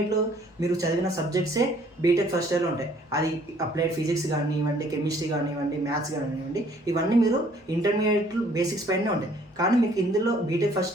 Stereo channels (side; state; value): both; normal; correlation 0.60